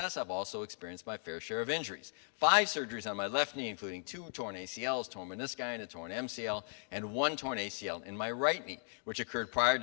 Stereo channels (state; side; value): silent; right; 53 dB below the other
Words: I've also experienced my fair share of injuries. 5 surgeries on my left knee, including 2 torn ACLs, torn menisci, and a torn MCL, and 1 torn ACL in my right knee, which occurred prior